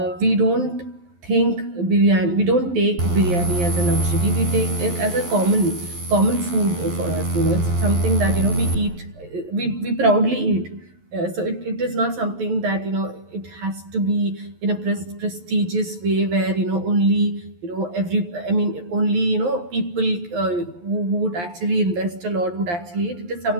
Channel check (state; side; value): late; left; 11 ms